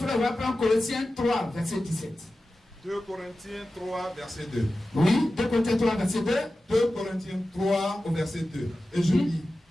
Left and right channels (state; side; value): normal; both; correlation 0.94